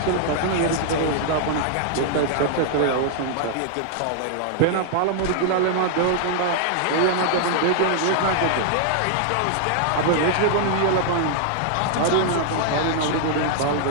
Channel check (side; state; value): both; different; correlation -0.01